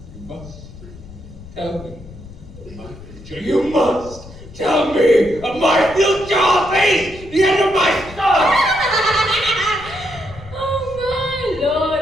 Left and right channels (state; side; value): noise; left; rumble, 17 dB below the sound